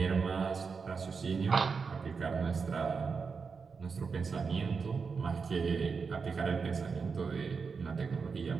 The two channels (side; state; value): left; quieter; 5.3 dB